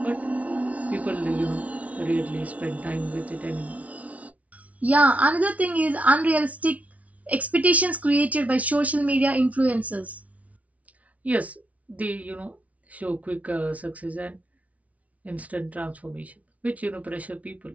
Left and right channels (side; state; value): left; late; 0.068 ms